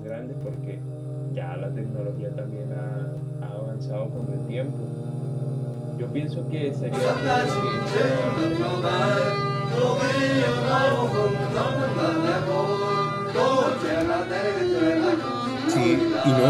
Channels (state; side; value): identical; both; correlation 1.00